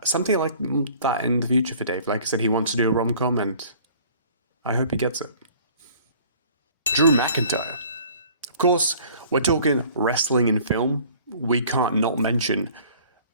something like that in the future for Dave. Like I said, he wants to do a rom-com, and I hope he gets it. Drew McIntyre. Of course, we're talking wrestling in film. We can't not mention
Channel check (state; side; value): inverted; both; correlation -0.51